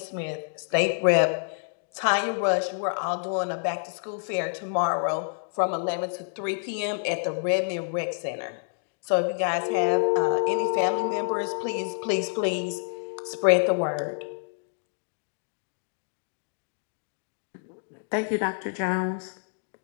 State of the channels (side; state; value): right; silent; digital silence